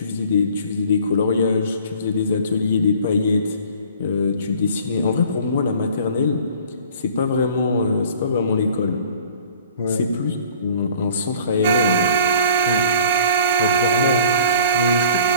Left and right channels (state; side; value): inverted; both; correlation -0.49